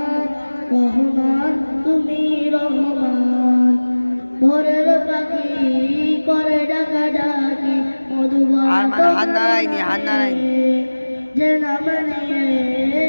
রহমান তুমি রহমান ভোরের পাখি করে ডাকা ডাকি মধুবন যে নাম নিয়ে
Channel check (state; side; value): inverted; both; correlation -1.00